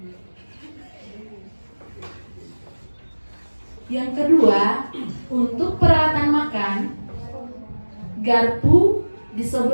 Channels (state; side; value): inverted; both; correlation -1.00